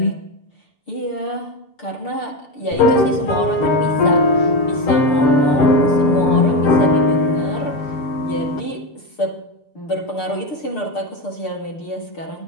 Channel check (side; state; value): right; late; 6.6 ms